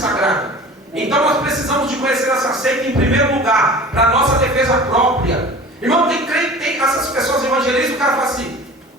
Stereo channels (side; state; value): both; normal; correlation 0.40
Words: Então nós precisamos de conhecer essa seita em primeiro lugar, para a nossa defesa própria. Irmão, tem crente, tem essas pessoas evangelistas, o cara fala assim: